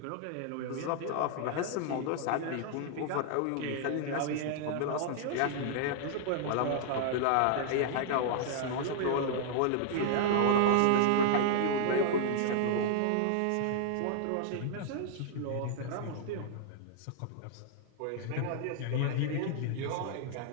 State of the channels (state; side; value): different; both; correlation -0.01